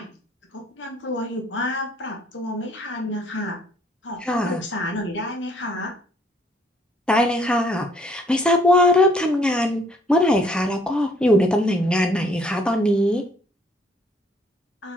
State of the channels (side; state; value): both; normal; correlation 0.63